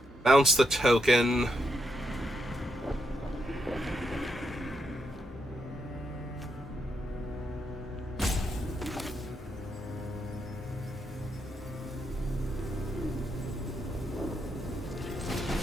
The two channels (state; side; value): normal; both; correlation 0.80